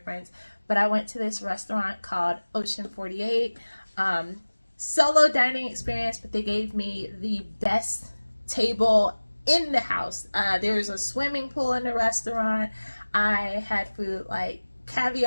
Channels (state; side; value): inverted; both; correlation -1.00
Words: But I went to this restaurant called Ocean 48. Solo dining experience, but they gave me the best table in the house. There was a swimming pool in the restaurant. I had food like